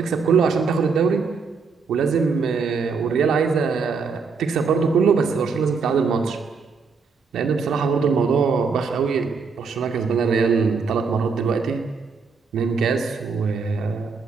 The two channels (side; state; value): left; quieter; 5.1 dB